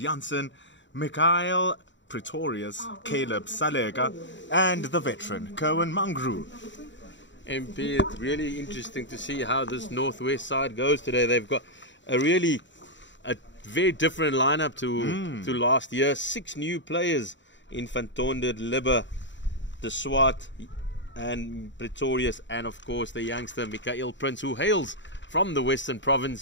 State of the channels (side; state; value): right; late; 0.54 ms